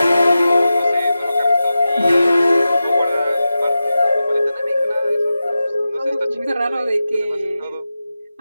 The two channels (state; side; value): inverted; both; correlation -0.93